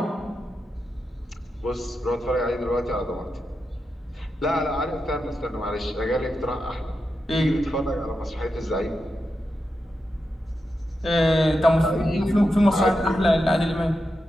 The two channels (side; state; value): both; normal; correlation 0.88